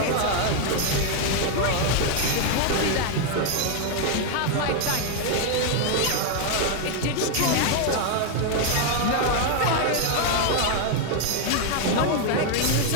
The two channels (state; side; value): different; both; correlation 0.00